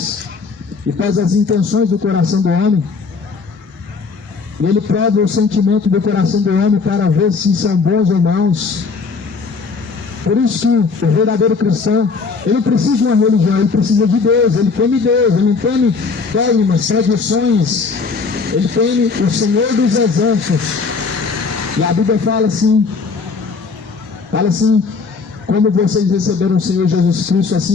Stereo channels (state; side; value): quieter; right; 4.8 dB